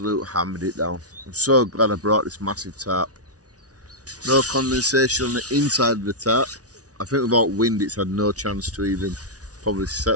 hammered it down. I'm so glad I brought this massive tarp. No condensation on the inside of the tarp. I think without wind it's had no chance to even probably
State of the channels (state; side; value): late; left; 0.68 ms